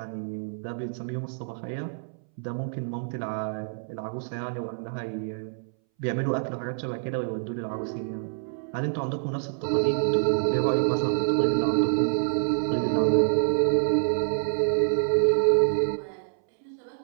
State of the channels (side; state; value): left; silent; 60 dB below the other